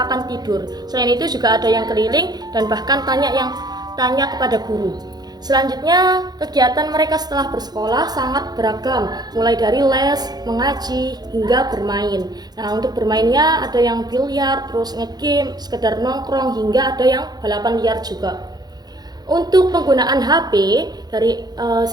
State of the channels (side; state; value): left; late; 0.19 ms